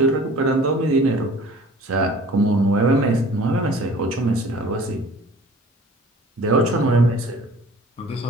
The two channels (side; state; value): both; normal; correlation 0.47